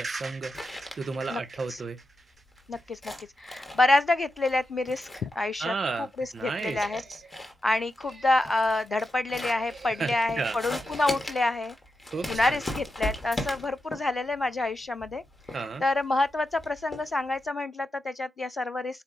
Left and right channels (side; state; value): both; normal; correlation 0.88